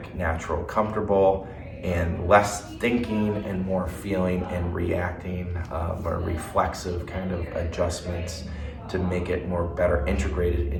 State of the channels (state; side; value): identical; both; correlation 1.00